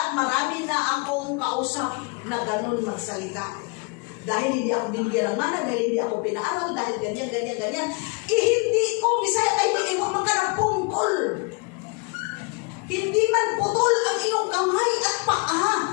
marami na akong kausap na ganun magsalita. Dahil hindi ako binigyan ng mana, dahil hindi ako pinaaral, dahil ganyan. Hindi ko, Bisaya, ay iiwan man ka ng pungkol. Hindi man putol ang iyong kamay at paa.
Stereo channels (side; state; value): right; quieter; 30.4 dB